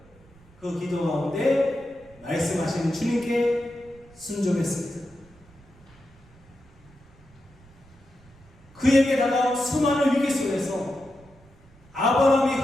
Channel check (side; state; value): right; noise; rumble, 26 dB below the sound